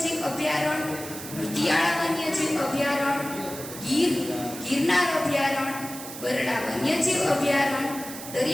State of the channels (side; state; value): right; noise; hiss, 11 dB below the sound